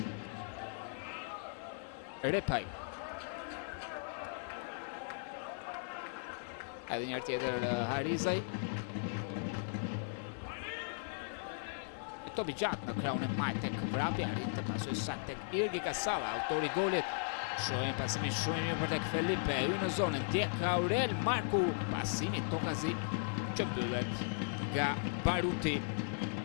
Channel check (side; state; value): right; silent; 53 dB below the other